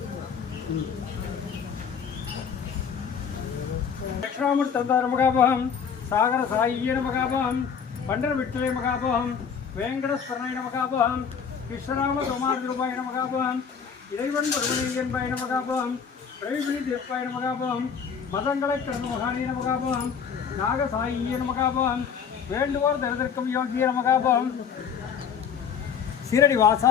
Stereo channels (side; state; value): right; quieter; 6.9 dB